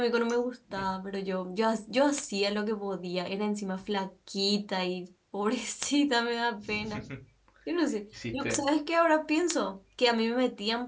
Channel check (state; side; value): identical; both; correlation 1.00